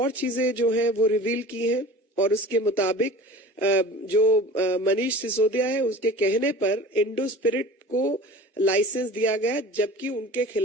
चीजें जो है वो रिवील की हैं, और उसके मुताबिक जो मनीष सिसोदिया है उसके कहने पर इंडो स्पिरिट को लाइसेंस दिया गया, जबकि उनके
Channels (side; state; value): both; normal; correlation 0.39